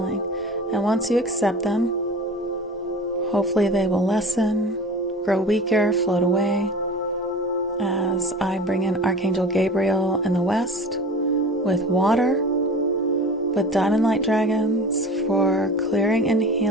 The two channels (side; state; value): both; normal; correlation 0.38